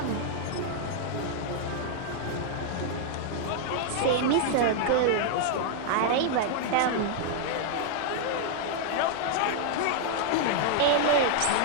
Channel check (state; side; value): different; both; correlation -0.01